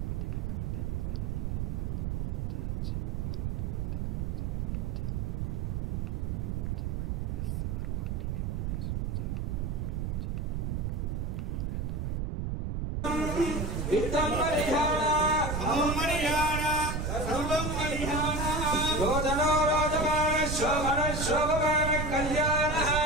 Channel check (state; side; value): noise; right; rumble, 1 dB below the sound